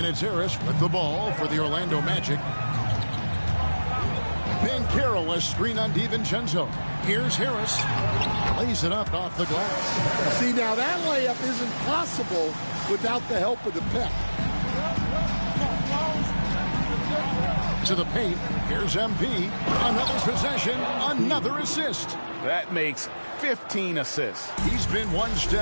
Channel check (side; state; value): both; inverted; correlation -1.00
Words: it's Harris with the ball for the Orlando Magic. Banchero, a screen on DiVincenzo. Here's Harris. Lays it up off the glass. See, now that layup isn't possible without the help of the pick. To the paint. Here's MP. Another possession. Another assist. That makes 15 assists. He's been one